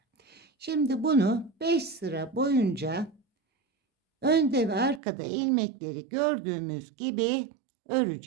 Şimdi bunu 5 sıra boyunca önde ve arkada ilmekleri gördüğümüz gibi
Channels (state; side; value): drops out; left; at 5.0 s